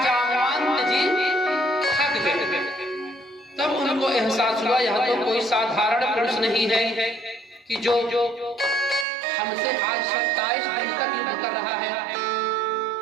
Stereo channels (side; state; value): left; drops out; at 9.1 s